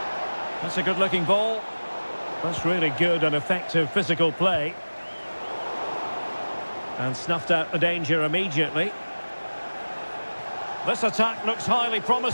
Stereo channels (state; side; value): inverted; both; correlation -1.00